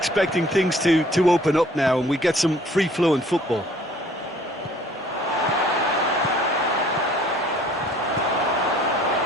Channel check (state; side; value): normal; both; correlation 0.56